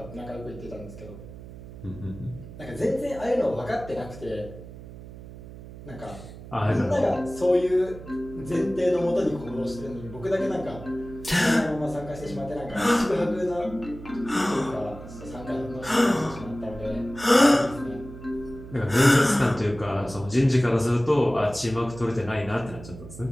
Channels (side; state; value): right; noise; hum, 15 dB below the sound